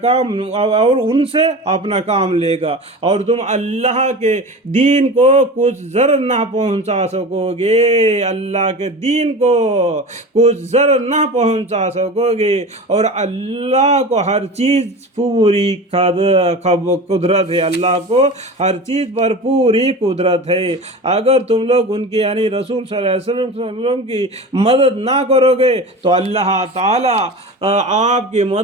اور ان سے اپنا کام لے گا، اور تم اللہ کے دین کو کچھ ضرر نہ پہنچا سکو گے، اللہ کے دین کو کچھ ضرر نہ پہنچا سکو گے، اور اللہ کو ہر چیز پوری قدرت ہے، اللہ کو ہر چیز پر پوری قدرت ہے۔ اگر تم لوگ ان کی یعنی رسول صلی اللہ علیہ وسلم کی مدد نہ کرو گے تو اللہ تعالیٰ آپ کی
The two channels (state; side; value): normal; both; correlation 0.31